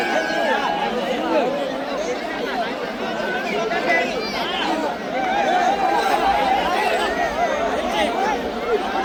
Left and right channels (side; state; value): both; identical; correlation 1.00